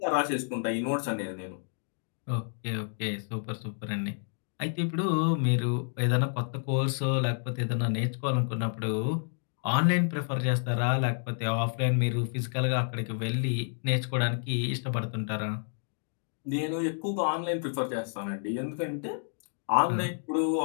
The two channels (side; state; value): right; silent; digital silence